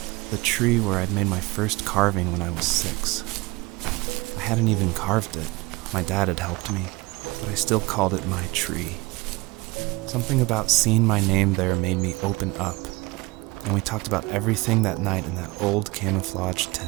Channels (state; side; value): quieter; left; 23.0 dB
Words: The tree where I'd made my first carving when I was 6. I hadn't even carved it. My dad had helped me, but I still called it my tree. Something about seeing my name there made me open up, and we talked about everything that night in that old camouflage